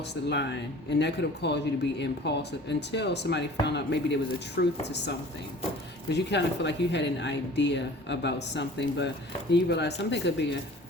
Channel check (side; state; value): both; normal; correlation 0.45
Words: the line. And that could have caused you to be impulsive until somebody found out maybe there was a truth to something. Because you kind of feel like you had an idea about something, but then you realize something could be